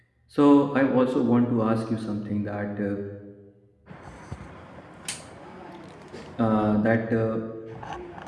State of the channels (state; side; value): identical; both; correlation 1.00